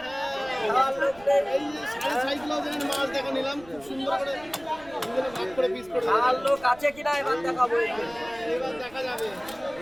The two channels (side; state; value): right; noise; rumble, 22 dB below the sound